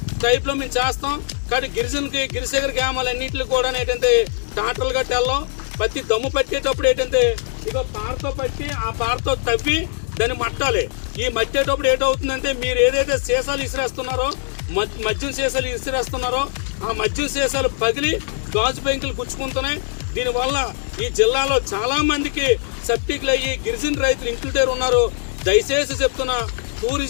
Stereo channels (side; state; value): right; silent; 60 dB below the other